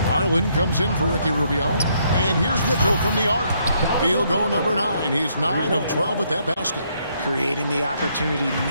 Garland comes in for Ricky Rubio. And here's Mitchell from the arc. Field goal number 9. He's 9 of 12 with that basket. Creating the opportunity,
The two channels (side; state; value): both; inverted; correlation -0.72